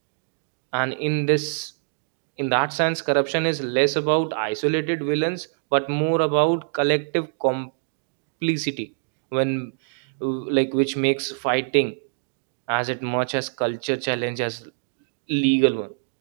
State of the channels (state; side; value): silent; left; digital silence